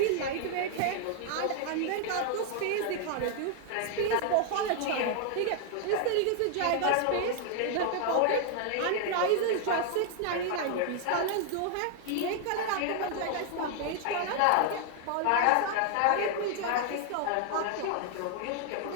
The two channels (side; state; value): both; different; correlation 0.00